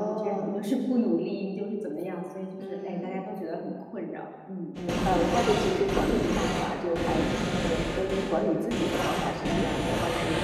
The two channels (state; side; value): identical; both; correlation 1.00